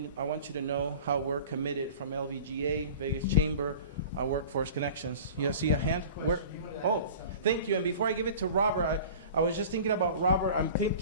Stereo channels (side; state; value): both; inverted; correlation -0.40